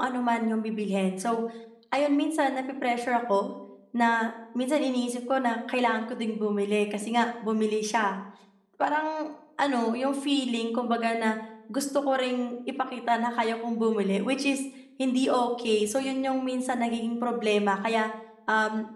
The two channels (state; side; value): identical; both; correlation 1.00